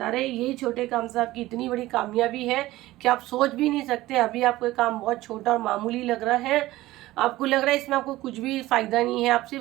रहे हैं यही छोटे काम से आपकी इतनी बड़ी कामयाबी है कि आप सोच भी नहीं सकते। अभी आपको ये काम बहुत छोटा और मामूली लग रहा है, आपको लग रहा है इसमें आपको कुछ भी फायदा नहीं है, आप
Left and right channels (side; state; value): left; quieter; 17.2 dB